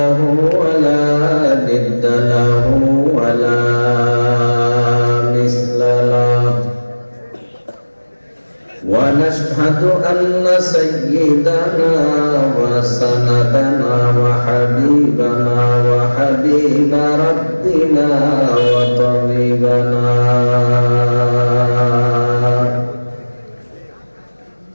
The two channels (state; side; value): inverted; both; correlation -1.00